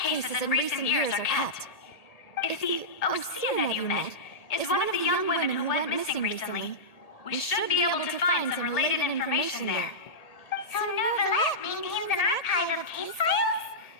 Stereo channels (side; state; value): right; late; 1.8 ms